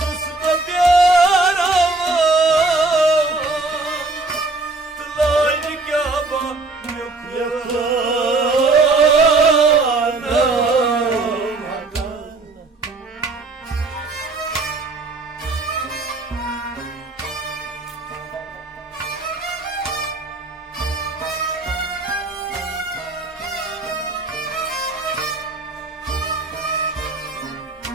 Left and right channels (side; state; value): left; quieter; 3.4 dB